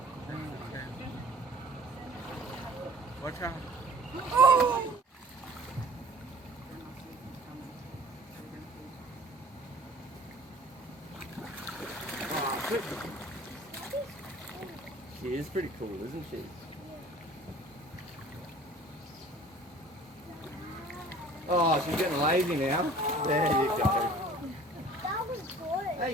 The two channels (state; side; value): normal; both; correlation 0.48